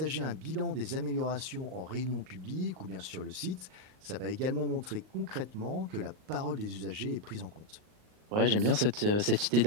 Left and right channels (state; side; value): late; left; 38 ms